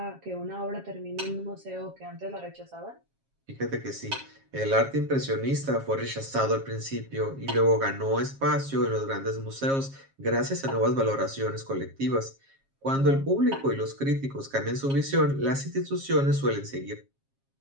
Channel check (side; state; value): left; late; 7.4 ms